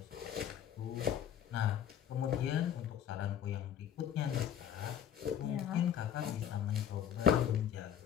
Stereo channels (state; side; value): quieter; right; 9.5 dB